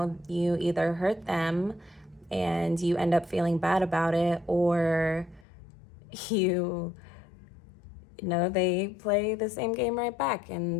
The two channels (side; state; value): right; drops out; at 5.5 s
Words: either hurt them and you end up feeling bad about it, or they play the same game right back,